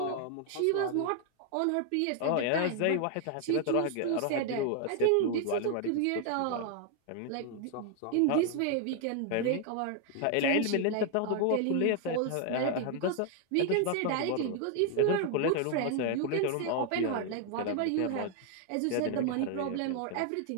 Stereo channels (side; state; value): both; different; correlation 0.00